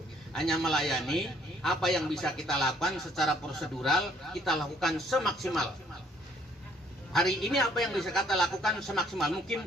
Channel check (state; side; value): normal; both; correlation 0.64